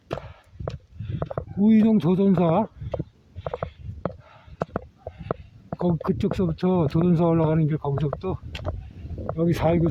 오이동 도선사 그쪽서부터 도선사 올라가는 길, 거기서부터 여기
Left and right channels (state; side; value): identical; both; correlation 1.00